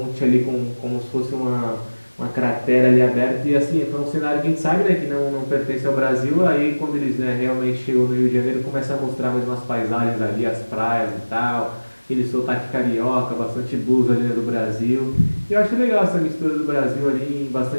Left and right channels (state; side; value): inverted; both; correlation -1.00